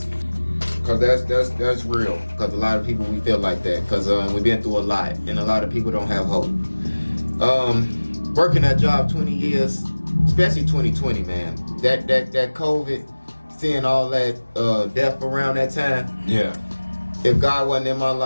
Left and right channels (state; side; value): inverted; both; correlation -1.00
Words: cause that's real. Cause a lot of people we feel like that. Cause we've been through a lot, and a lot of people don't have hope. Working that job 20 years, especially 2020, man. That COVID, seeing all that death around that time. Yeah. If God wasn't in my